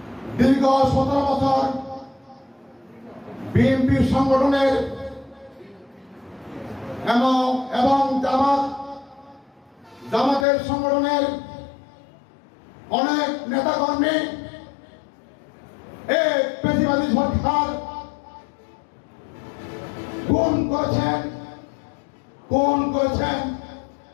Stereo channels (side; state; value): right; drops out; at 10.5 s